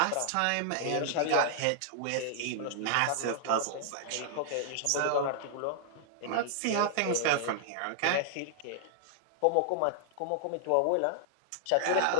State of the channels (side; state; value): both; different; correlation -0.01